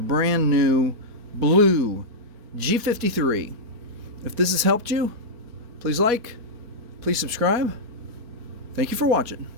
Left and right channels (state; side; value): late; left; 4.4 ms